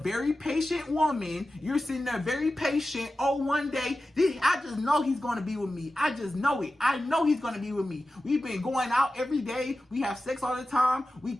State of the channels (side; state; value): both; normal; correlation 0.94